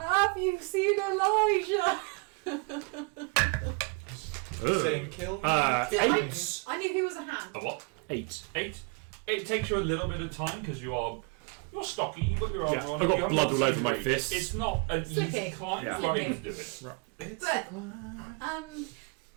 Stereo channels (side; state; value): left; quieter; 31.8 dB